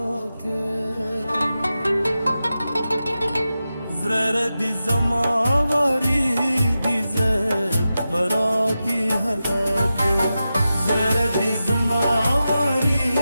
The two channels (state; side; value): inverted; both; correlation -0.92